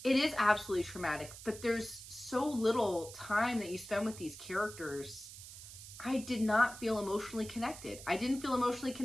it is absolutely traumatic, but there's so little time that you spend with these characters. I did not feel emotionally connected. I didn't feel emotionally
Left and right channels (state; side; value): noise; right; hiss, 14 dB below the sound